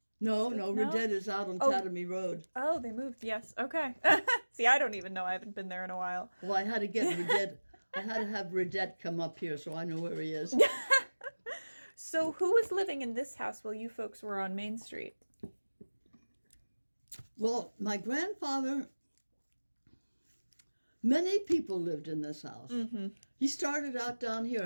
No, Ridette is out on Tatamy Road. Oh, they moved. Yes. Okay. See, I don't even know. I haven't been there in a while. Well, I had to get Ridette. I had to have Ridette come up here so I know where he is. So who was living in this house while you folks were on Main Street? Well, my grandfather, many people lived in this house. He started out down here,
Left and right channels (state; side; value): inverted; both; correlation -1.00